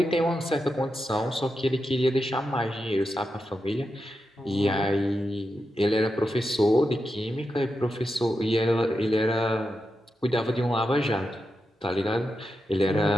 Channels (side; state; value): both; normal; correlation 0.88